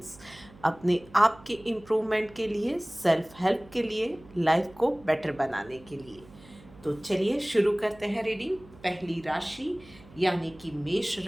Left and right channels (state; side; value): noise; right; hum, 23 dB below the sound